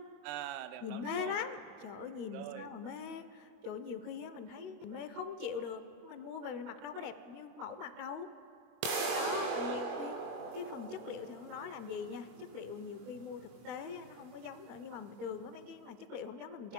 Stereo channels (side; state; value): left; late; 24 ms